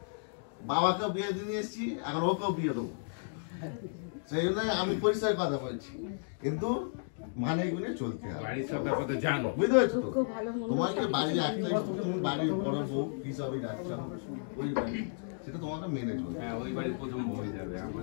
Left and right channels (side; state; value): right; silent; digital silence